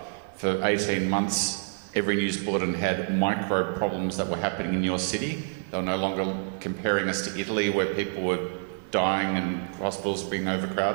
for 18 months, every news bulletin had micro problems that were happening in your city. They were no longer comparing us to Italy, where people were dying and hospitals being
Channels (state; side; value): silent; left; 60 dB below the other